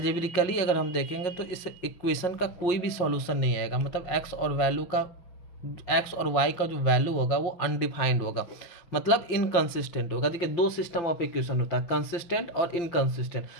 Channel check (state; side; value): late; right; 6.0 ms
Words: अगर हम देखेंगे तो इस इक्वेशन का कोई भी सॉल्यूशन नहीं आएगा। मतलब एक्स और वाई का जो वैल्यू होगा वो अनडिफाइंड होगा, मतलब इनकंसिस्टेंट होगा। देखिए दो सिस्टम ऑफ इक्वेशन होता है, कंसिस्टेंट और इनकंसिस्टेंट।